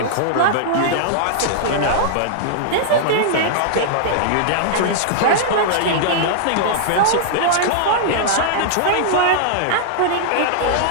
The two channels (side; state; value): both; different; correlation -0.01